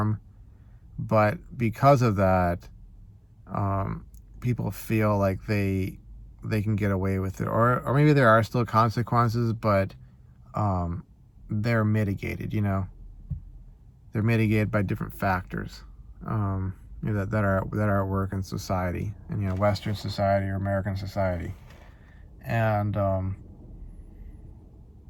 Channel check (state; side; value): identical; both; correlation 1.00